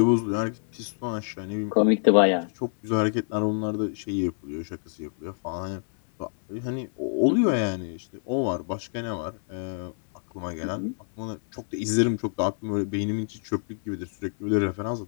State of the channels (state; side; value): silent; right; 60 dB below the other